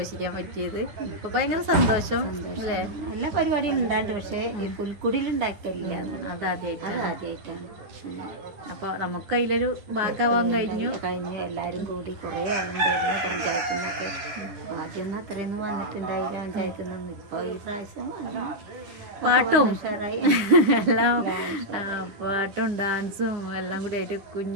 പറ്റിയത്. അപ്പൊ ഭയങ്കര സന്തോഷം അല്ലേ? നല്ല പരിപാടികൾ ഉണ്ടായിട്ടുണ്ട്, പക്ഷേ ഈ പുൽക്കുടിയിൽ ഉണ്ടാക്കില്ല. ആദ്യമായിട്ടാണ്. അപ്പൊ നമുക്ക് അതിലൊരു ഭാഗമാവാൻ കഴിഞ്ഞു. എല്ലാവരും കൂടി കുറേ ആളുണ്ടായിരുന്നു പഞ്ചായത്തിൽ നിന്നൊക്കെ. ആദ്യമൊന്നും അത്രയൊന്നും വന്നിട്ടുണ്ടായില്ല പഞ്ചായത്തിൽ നിന്ന്. ഇപ്പൊ ഈ പ്രാവശ്യം പാട്ടും എല്ലാം പാട്ടും ഡാൻസും എല്ലാം കൂടി ആയിട്ട്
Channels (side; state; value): left; late; 9.6 ms